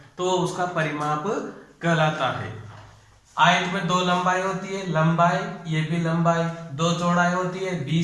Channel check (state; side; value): identical; both; correlation 1.00